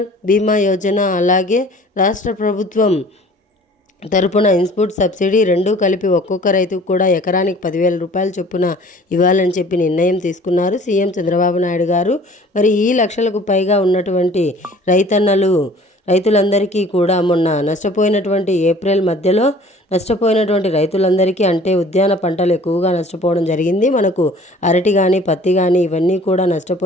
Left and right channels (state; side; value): normal; both; correlation 0.49